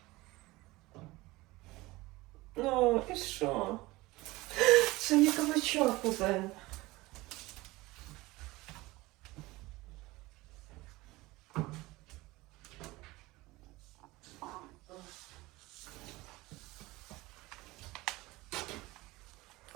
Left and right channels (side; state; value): left; quieter; 20.6 dB